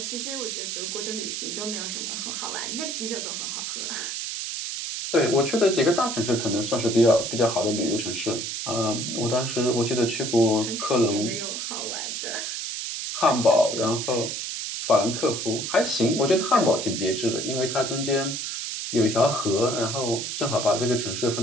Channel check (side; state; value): right; noise; hiss, 4 dB below the sound